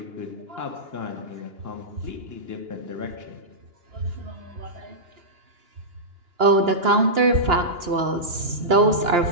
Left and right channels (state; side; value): late; left; 2.9 ms